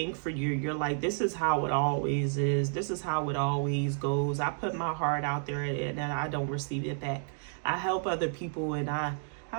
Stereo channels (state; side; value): silent; left; digital silence